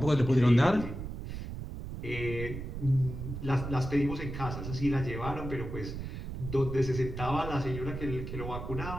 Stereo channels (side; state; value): right; noise; rumble, 7 dB below the sound